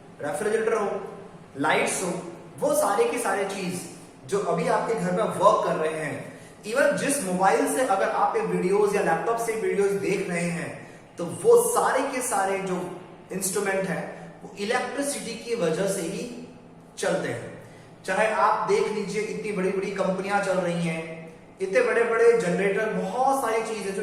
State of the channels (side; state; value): both; identical; correlation 1.00